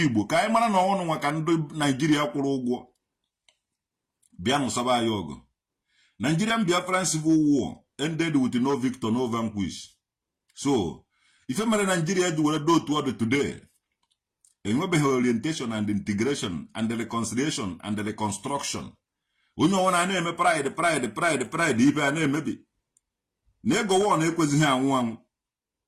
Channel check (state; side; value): identical; both; correlation 1.00